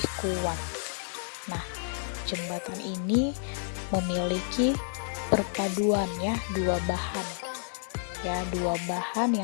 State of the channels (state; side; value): silent; right; digital silence